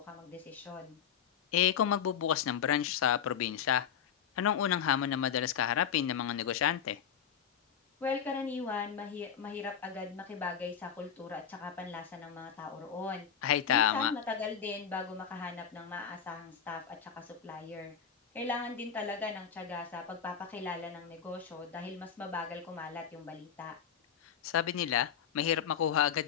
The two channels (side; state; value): right; quieter; 8.2 dB